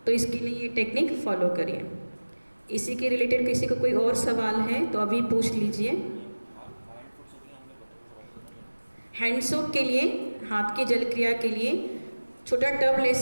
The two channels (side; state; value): both; inverted; correlation -1.00